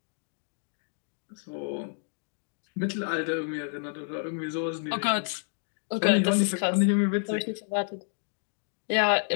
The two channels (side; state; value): right; silent; digital silence